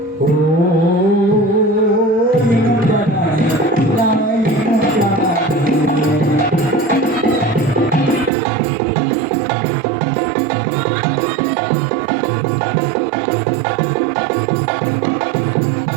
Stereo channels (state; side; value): drops out; left; at 8.3 s